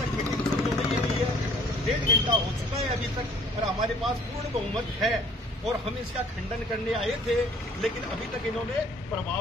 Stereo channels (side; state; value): both; normal; correlation 0.57